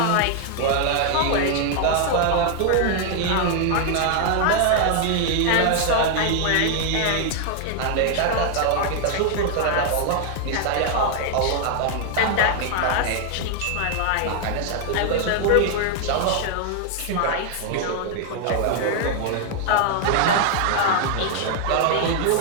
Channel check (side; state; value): both; different; correlation 0.00